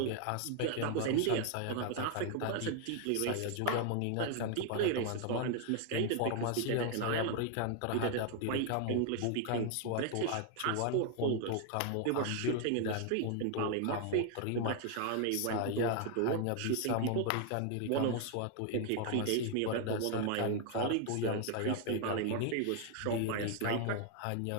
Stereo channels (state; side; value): different; both; correlation 0.00